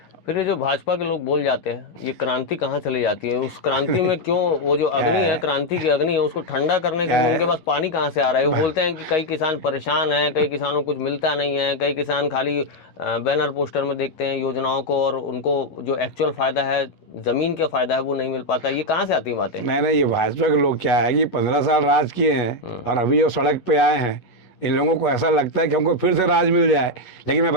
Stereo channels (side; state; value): right; late; 11 ms